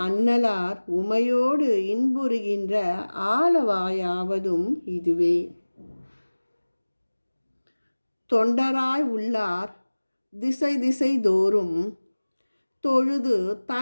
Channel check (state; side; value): inverted; both; correlation -1.00